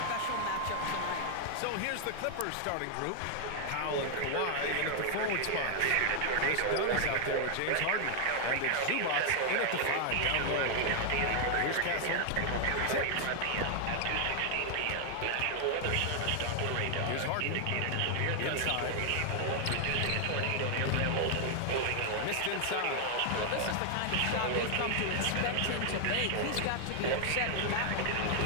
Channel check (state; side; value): different; both; correlation 0.00